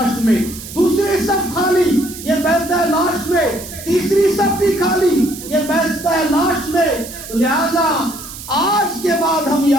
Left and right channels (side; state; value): right; noise; hiss, 13 dB below the sound